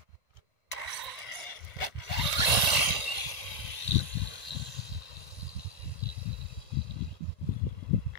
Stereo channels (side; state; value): right; late; 1.9 ms